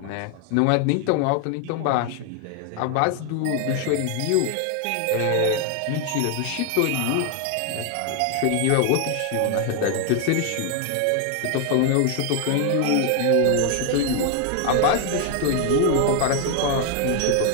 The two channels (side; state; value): both; different; correlation 0.00